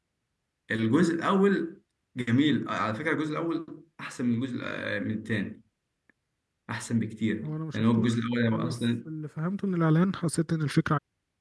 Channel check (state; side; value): identical; both; correlation 1.00